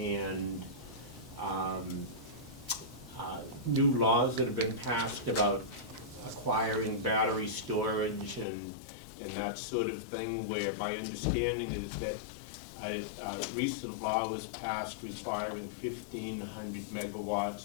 new laws that have been passed about acquiring battery storage and that sort of thing, where my understanding is that a recent law was passed requiring 1,500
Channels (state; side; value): drops out; right; at 8.5 s